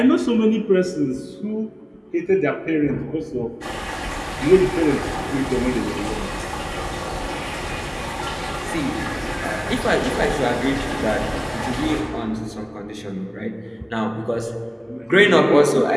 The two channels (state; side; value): identical; both; correlation 1.00